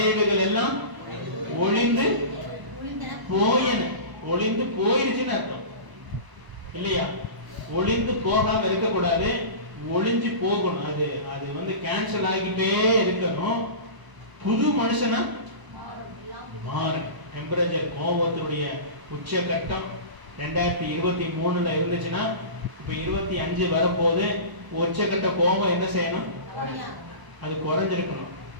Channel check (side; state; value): left; late; 1.0 ms